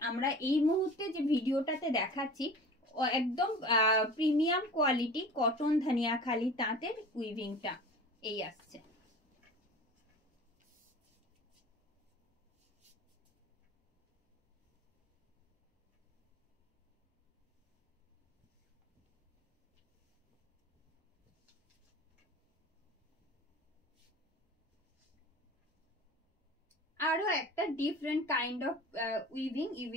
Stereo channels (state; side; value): normal; both; correlation 0.40